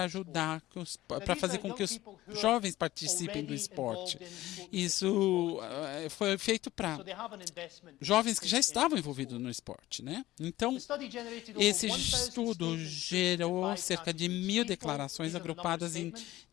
ajudar, para fazer com que os jovens participem do esporte? Isso foi feito para jovens que já estavam envolvidos no esporte, né? Então, esse estudo gerou cerca de 1.000 declarações agrupadas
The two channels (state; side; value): quieter; right; 16.2 dB